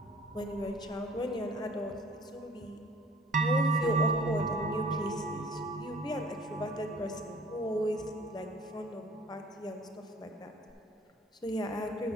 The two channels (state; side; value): normal; both; correlation 0.52